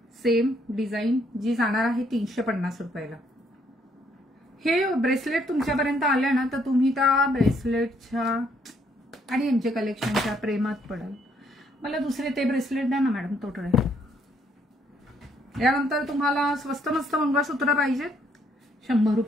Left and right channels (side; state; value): both; normal; correlation 0.69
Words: सेम डिझाईन जी जाणार आहे 350 रुपयाला. हे ब्रेसलेट तुमच्यापर्यंत आले ना तर तुम्ही त्या ब्रेसलेटच्या आणि एमजे कलेक्शनच्या प्रेमात पडाल. मला दुसरे ते ब्रेसलेट द्या ना मॅडम तोटळे. यानंतर तुम्हाला स्वस्त मस्त मंगळसूत्र पाहिजेत 100